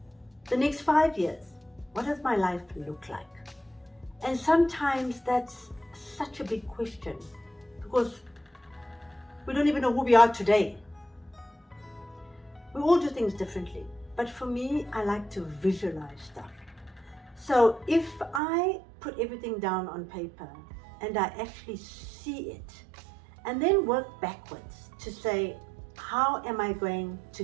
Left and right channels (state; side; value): drops out; left; at 18.4 s